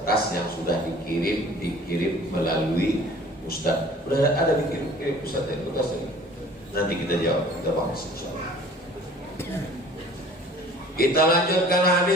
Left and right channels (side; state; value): both; normal; correlation 0.49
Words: yang sudah dikirim melalui Ustadz. Udah ada dikirim Ustadz dari kertas ini. Nanti kita jawab, kita bahas insyaallah. Kita lanjutkan